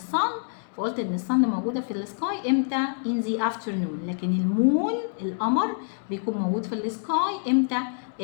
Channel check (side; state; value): right; silent; digital silence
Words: فقلت ان الصن موجوده في السكاي امتى؟ in the afternoon، لكن المون القمر بيكون موجود في السكاي امتى؟